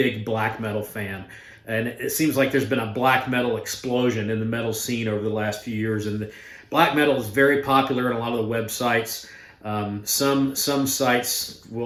black metal fan. And it seems like there's been a black metal explosion in the metal scene over the last few years. And black metal is very popular in a lot of the websites. Some sites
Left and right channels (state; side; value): identical; both; correlation 1.00